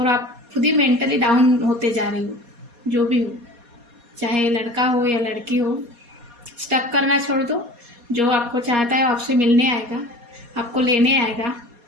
आप खुद ही मेंटली डाउन होते जा रहे हो। जो भी हो, चाहे लड़का हो या लड़की हो, स्टक करना छोड़ दो। जो आपको चाहता है वो आपसे मिलने आएगा, आपको लेने आएगा।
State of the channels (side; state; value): left; late; 4.2 ms